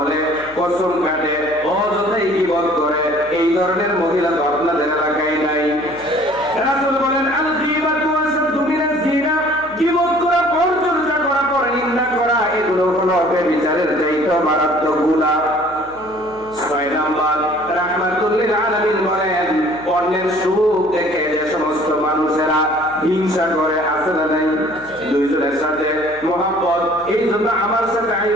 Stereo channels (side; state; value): left; noise; hum, 23 dB below the sound